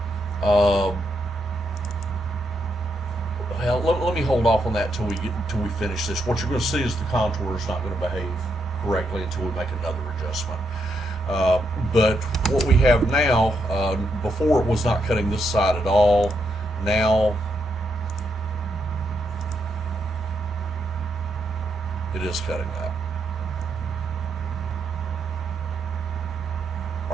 well, let me hold off on that till we finish this. What you're going to see is the contour is not going to behave correctly until we make another adjustment. But what we have now, before it was not cutting this side at all. Now it is cutting that.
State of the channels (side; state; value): both; normal; correlation 0.80